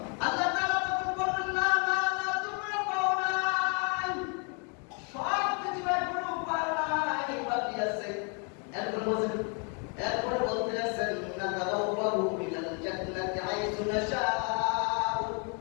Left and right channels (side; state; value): right; quieter; 37.2 dB